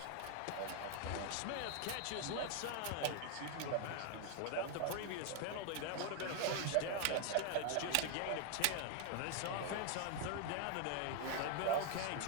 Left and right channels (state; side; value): different; both; correlation 0.00